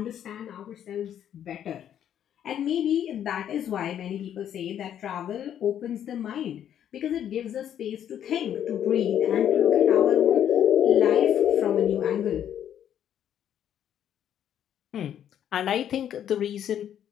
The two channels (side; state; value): right; quieter; 10.0 dB